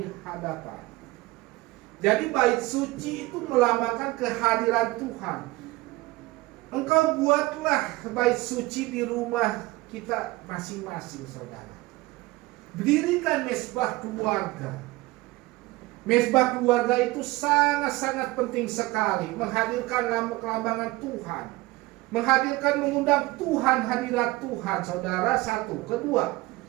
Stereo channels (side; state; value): left; quieter; 20.3 dB